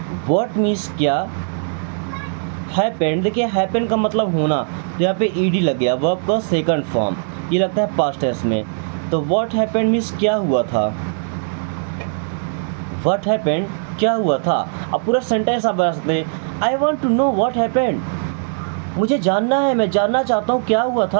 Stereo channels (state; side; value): silent; left; 66 dB below the other